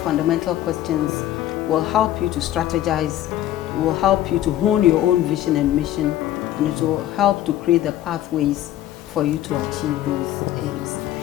questions will help you to strategize, will help you to hone your own vision and mission, and it will help to create the pathways for you to achieve those aims.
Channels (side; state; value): right; quieter; 13.0 dB